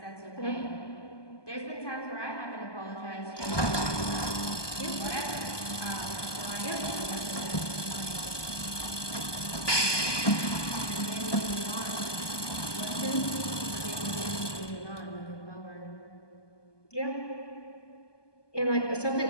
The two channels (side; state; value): right; late; 1.2 ms